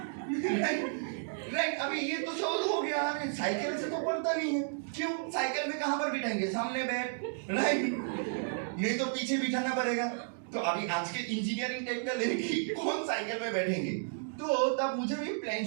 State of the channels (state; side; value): silent; left; digital silence